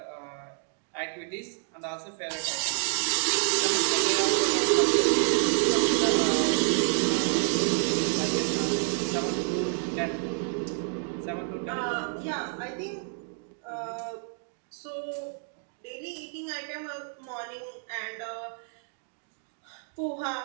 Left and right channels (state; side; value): silent; left; 59 dB below the other